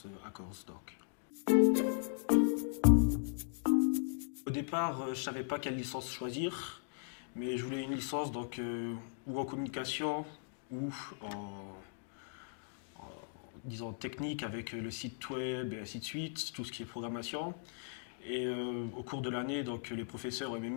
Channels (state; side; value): silent; right; digital silence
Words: Accords donc. Au départ, je savais pas quelle licence choisir, mais je voulais une licence donc ou en communication ou disons technique avec le site web et ainsi de suite, tout ce qui est programmation. Et au cours de l'année, donc les professeurs au